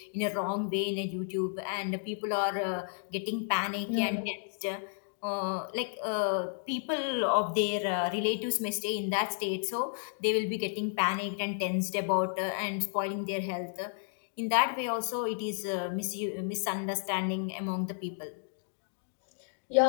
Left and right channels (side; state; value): right; silent; digital silence